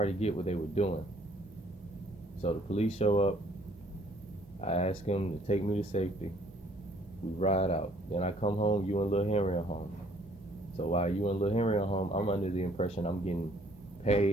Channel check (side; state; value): both; normal; correlation 0.61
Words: get what they were doing. So the police show up. I ask them to take me to safety. We ride out. Then I come home. You and Lil Henry are home. So while you and Lil Henry are home, I'm under the impression I'm getting